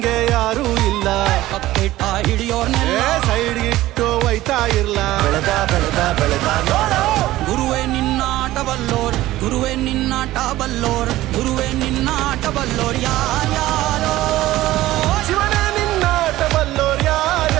ಯಾರೂ ಇಲ್ಲ ಕಕ್ಕಿಟ್ಟ ಹಿಡಿಯೋರ್ನೆಲ್ಲ ಸೈಡ್ ಇಟ್ಟು ಒಯ್ತಾ ಇರ್ಲ ಬೆಳೆದ ಬೆಳೆದ ಬೆಳೆದ ನೋಡು ಗುರುವೇ ನಿನ್ನಾಟ ಬಲ್ಲೋರ್ ಗುರುವೇ ನಿನ್ನಾಟ ಬಲ್ಲೋರ್ ಗುರುವೇ ನಿನ್ನಾಟ ಬಲ್ಲೋರ್ ಯಾರ್ಯಾರೋ ಶಿವನೇ ನಿನ್ನಾಟ ಬಲ್ಲೋರ್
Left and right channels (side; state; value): left; quieter; 16.1 dB